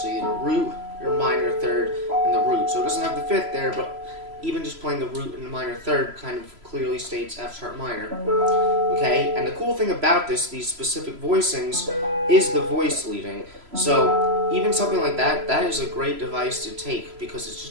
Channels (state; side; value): late; left; 3.0 ms